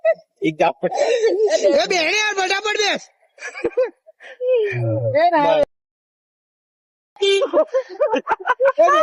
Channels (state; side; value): identical; both; correlation 1.00